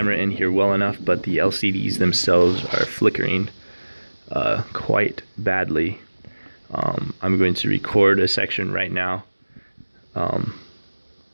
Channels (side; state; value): both; inverted; correlation -1.00